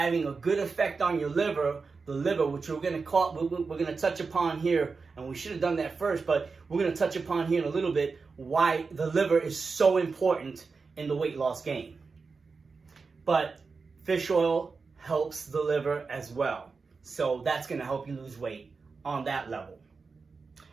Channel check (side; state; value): left; quieter; 4.6 dB